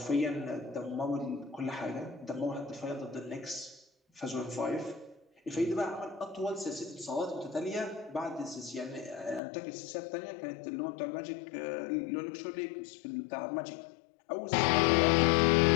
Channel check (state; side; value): drops out; right; at 9.4 s